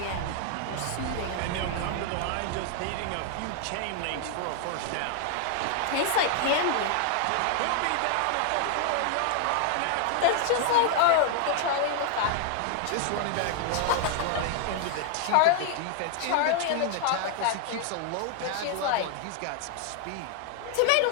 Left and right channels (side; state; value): both; different; correlation 0.00